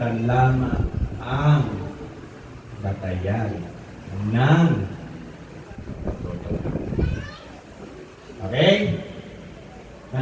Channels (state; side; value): identical; both; correlation 1.00